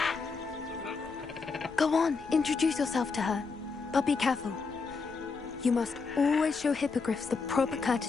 Go on, introduce yourself to her. But be careful. You must always show hippogriffs the proper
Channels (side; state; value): right; quieter; 4.7 dB